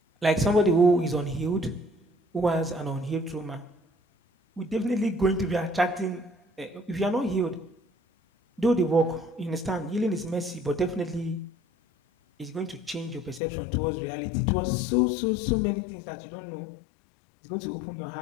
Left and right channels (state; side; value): drops out; right; at 13.4 s